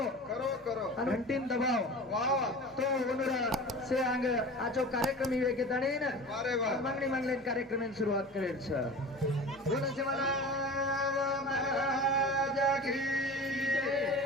करो घंटीन दबाओ वाह वाह तो वनूर से आंग आजो कार्यक्रम इवे के तणेन वाह रे वाह मागणी कार्यक्रम सुरुवात करेल छ बोला से मला महाराजा की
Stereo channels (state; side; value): normal; both; correlation 0.35